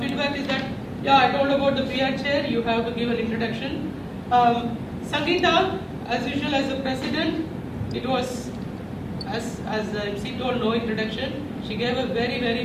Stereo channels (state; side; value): identical; both; correlation 1.00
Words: is that, yeah, I told about the PR chair, you have to give an introduction. Sangeeta, as usual as the president, it was, as MC told, no introduction. She gave a very, very